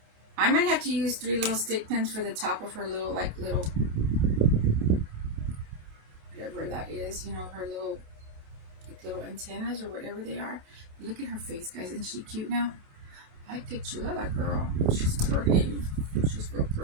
I might have to use 3 little stick pins for the top of her little whatever that is, you know, her little antennas or whatever they are. Look at her face, guys. Isn't she cute now? I get you, that girl. She's pretty. She's real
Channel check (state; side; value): late; left; 27 ms